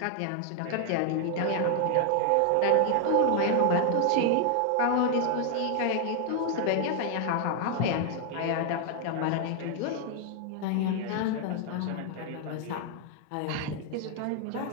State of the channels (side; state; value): both; different; correlation 0.00